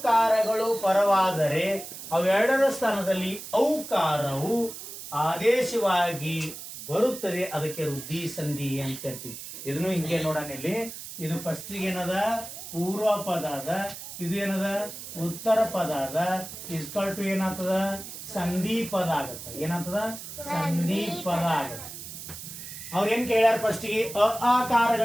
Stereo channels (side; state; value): right; noise; hiss, 11 dB below the sound